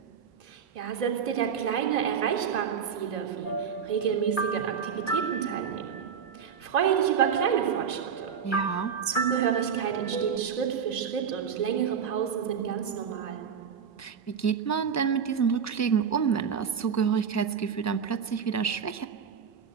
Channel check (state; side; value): quieter; left; 7.1 dB